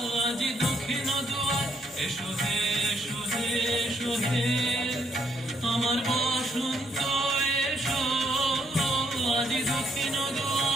আজি দক্ষিণ দুয়ার, এসো হে এসো হে এসো হে আমার বসন্ত এসো, আজি দক্ষিণ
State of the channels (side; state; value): both; normal; correlation 0.72